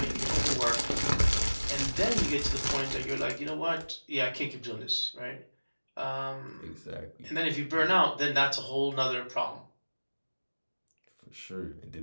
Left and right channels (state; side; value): inverted; both; correlation -1.00